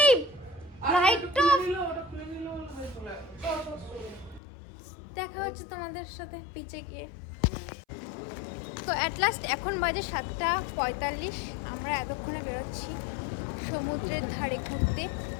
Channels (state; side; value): drops out; right; at 4.4 s